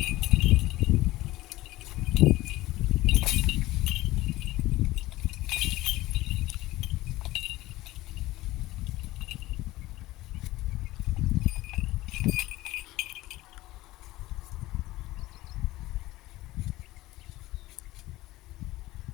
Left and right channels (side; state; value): right; quieter; 17.8 dB